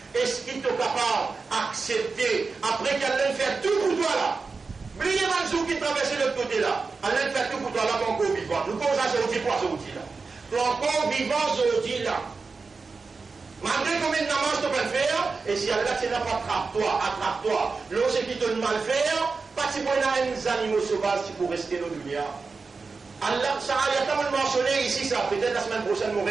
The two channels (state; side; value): quieter; left; 4.4 dB